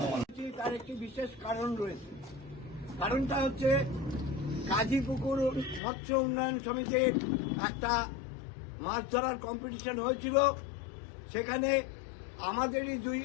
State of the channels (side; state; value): right; drops out; at 5.8 s